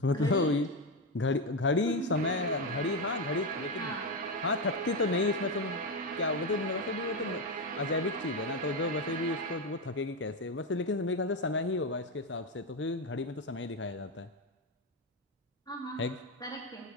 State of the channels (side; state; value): both; normal; correlation 0.11